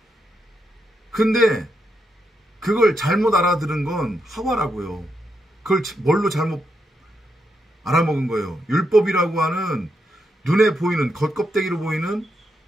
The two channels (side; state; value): both; normal; correlation 0.82